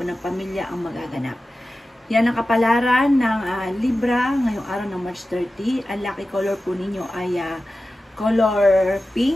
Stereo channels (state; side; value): normal; both; correlation 0.94